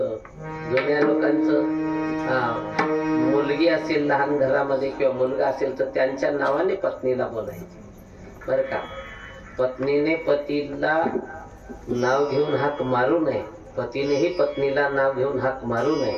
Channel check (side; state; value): both; identical; correlation 1.00